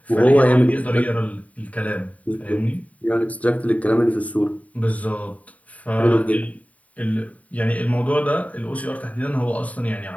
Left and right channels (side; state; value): right; late; 0.069 ms